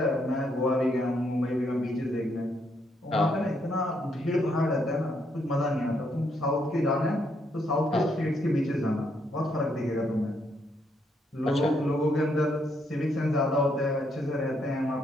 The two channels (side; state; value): both; normal; correlation 0.75